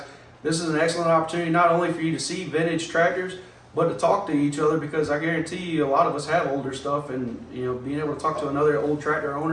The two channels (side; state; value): both; identical; correlation 1.00